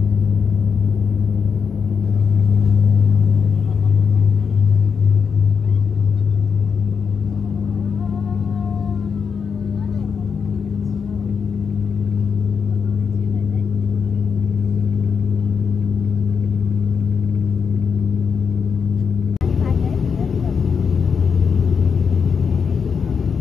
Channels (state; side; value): quieter; right; 6.2 dB